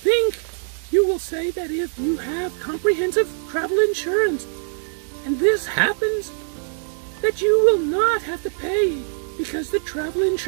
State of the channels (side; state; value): left; silent; digital silence